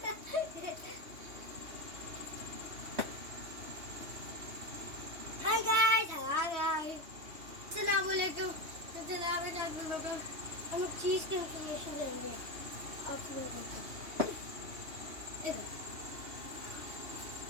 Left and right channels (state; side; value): late; left; 3.2 ms